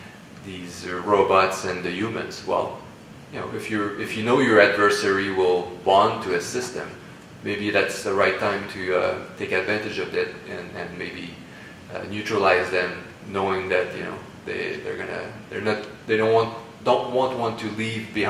these robots and the humans. Well, if you know your adversary will bond to a system, maybe that's the right time to take advantage of it and maybe neutralize them, knowing that they don't want to leave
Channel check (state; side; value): identical; both; correlation 1.00